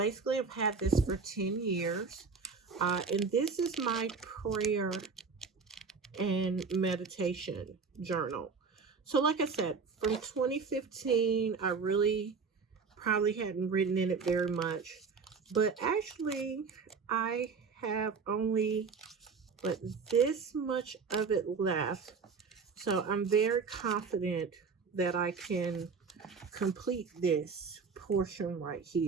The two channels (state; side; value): quieter; left; 5.1 dB